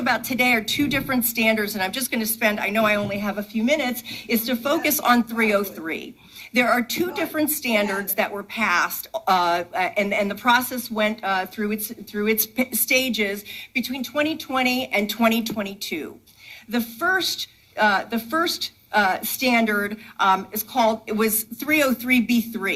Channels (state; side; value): identical; both; correlation 1.00